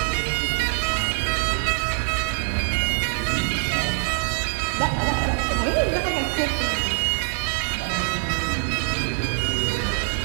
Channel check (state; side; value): silent; left; digital silence